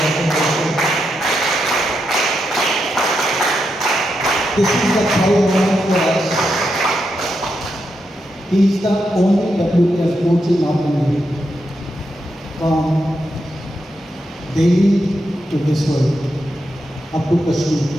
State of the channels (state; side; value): normal; both; correlation 0.84